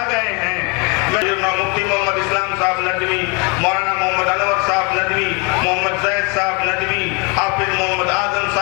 گئے ہیں، مفتی محمد اسلام صاحب ندوی، مولانا محمد انور صاحب ندوی، محمد زید صاحب ندوی، حافظ محمد اعظم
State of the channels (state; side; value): quieter; right; 30.7 dB